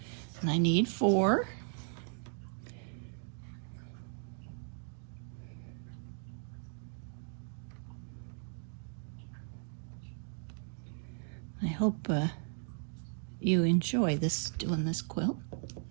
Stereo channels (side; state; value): left; silent; 53 dB below the other